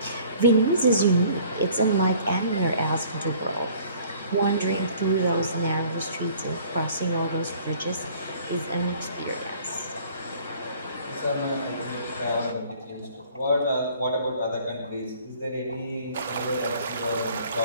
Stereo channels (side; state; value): both; inverted; correlation -0.54